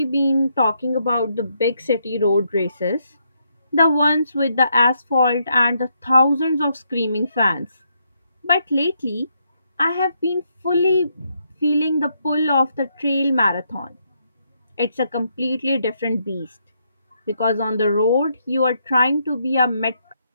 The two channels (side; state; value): both; inverted; correlation -0.76